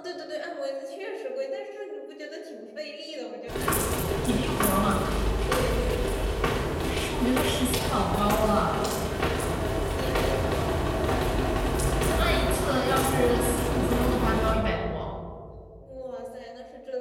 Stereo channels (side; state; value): both; identical; correlation 1.00